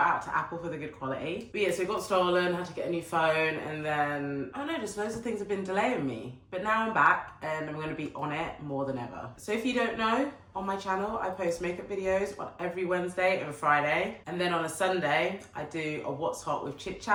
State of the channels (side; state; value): both; identical; correlation 1.00